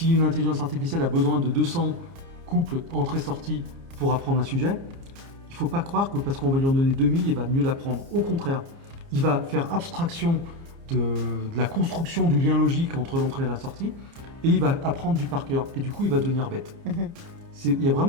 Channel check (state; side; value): late; left; 30 ms